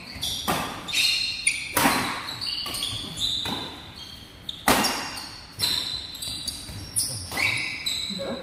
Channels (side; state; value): both; identical; correlation 1.00